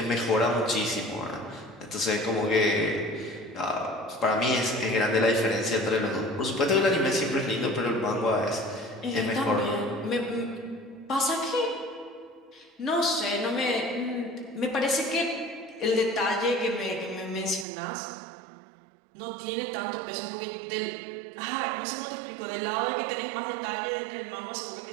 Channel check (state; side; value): drops out; left; at 17.7 s